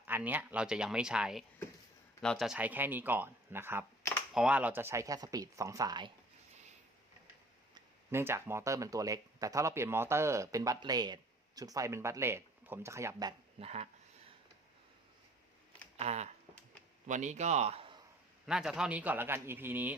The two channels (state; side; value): normal; both; correlation 0.52